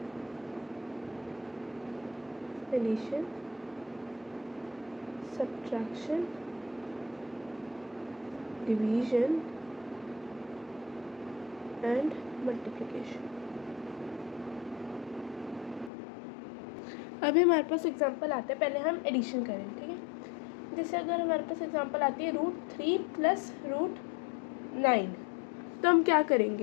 addition, subtraction, division and multiplication. अभी हमारे पास एग्जांपल आता है, पहले हम एडिशन करें। ठीक है, जैसे अगर हमारे पास एग्जांपल आती है √3 प्लस √9, तो हम क्या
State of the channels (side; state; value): right; drops out; at 15.9 s